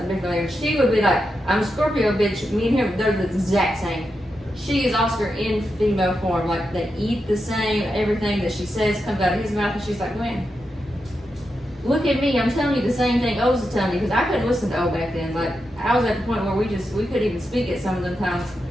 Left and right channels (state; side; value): normal; both; correlation 0.87